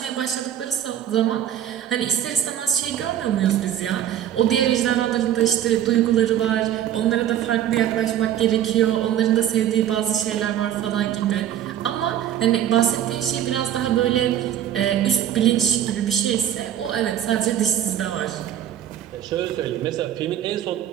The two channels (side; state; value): left; quieter; 10.7 dB